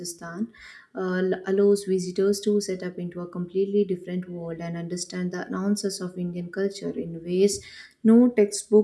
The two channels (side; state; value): both; identical; correlation 1.00